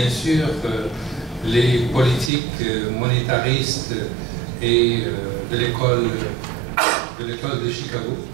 sûr les politiques monétaristes et de l'école de Chicago,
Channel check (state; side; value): drops out; left; at 2.3 s